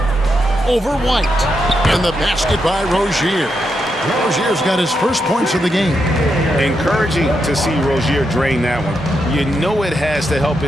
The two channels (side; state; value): both; normal; correlation 0.83